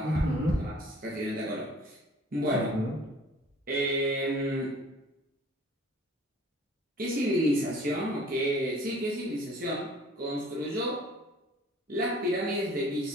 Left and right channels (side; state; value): both; normal; correlation 0.51